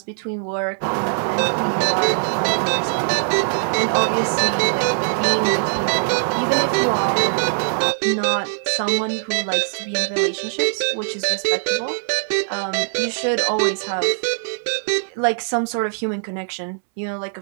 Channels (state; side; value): silent; left; 64 dB below the other